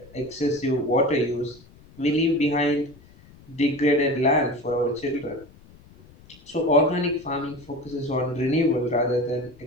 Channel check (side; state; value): left; noise; rumble, 24 dB below the sound